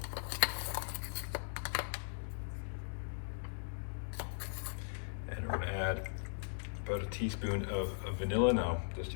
And we're going to add about a teaspoon of vanilla. Now, that's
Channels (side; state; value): right; silent; digital silence